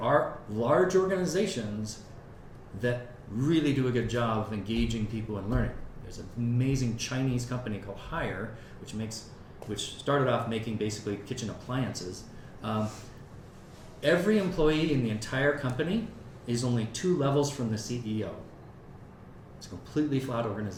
are large organizations that really do a good job of engaging people in learning. There's an amazing Chinese company called Haier, which started off making basically kitchen appliances. Every employee in the entire company is only 2 levels from the CEO. It's a completely flat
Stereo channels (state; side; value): identical; both; correlation 1.00